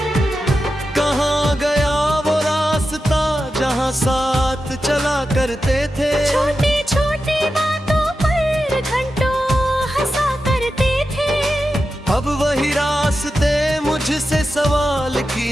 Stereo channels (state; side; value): normal; both; correlation 0.91